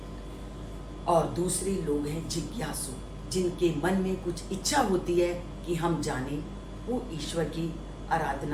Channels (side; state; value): both; identical; correlation 1.00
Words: और दूसरे लोग हैं जिज्ञासु, जिनके मन में कुछ इच्छा होती है कि हम जाने, वो ईश्वर की